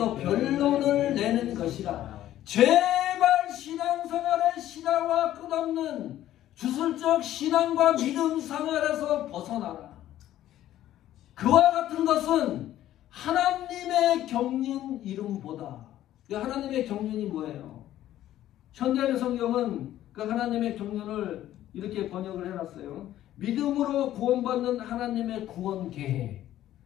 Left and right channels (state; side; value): quieter; right; 13.0 dB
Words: 변론을 내는 것이라. 제발 신앙생활의 신하와 끝없는 주술적 신앙과 믿음 생활에서 벗어나라. 그와 같은 것은 하나님의 경륜 이름보다. 하나님의 경륜이 뭐예요? 현대의 성경은 그 하나님의 경륜을 이렇게 번역을 해놨어요. 믿음으로 구원받는 하나님의 구원 계획,